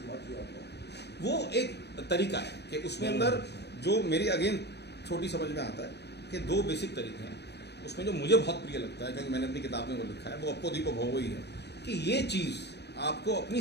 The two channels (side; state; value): right; late; 0.49 ms